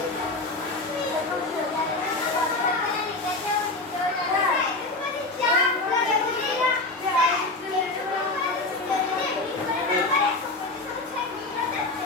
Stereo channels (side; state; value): right; quieter; 3.1 dB